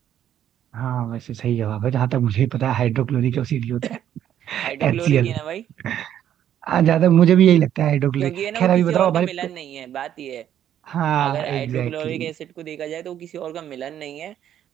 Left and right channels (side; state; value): left; quieter; 10.5 dB